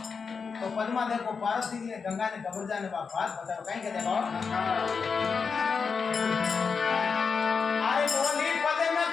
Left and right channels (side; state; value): right; quieter; 5.5 dB